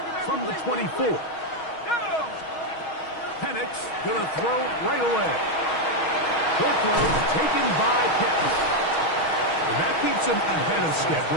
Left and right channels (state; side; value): late; right; 6.3 ms